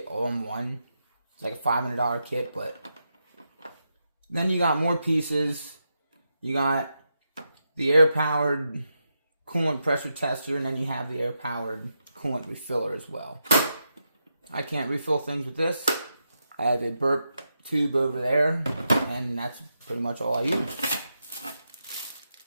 all in one. It's like a $500 kit, but then you got more pieces. You got the air-powered coolant pressure tester, and then you have the air-powered coolant refiller as well. I can't refill things with this. I have a burp tube over there, and that's pretty much all I use.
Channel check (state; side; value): inverted; both; correlation -0.85